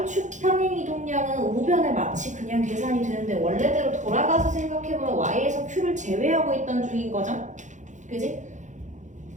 평행이동량은 우변에 마치 그냥 계산이 되는데 원래대로 돌아가서 생각해보면 y에서 q를 제외하고 있던 중인 거죠. 그지?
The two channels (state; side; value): late; left; 0.35 ms